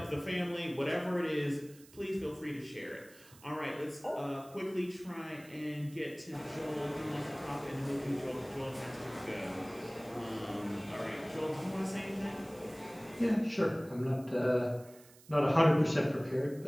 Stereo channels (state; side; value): noise; right; hiss, 23 dB below the sound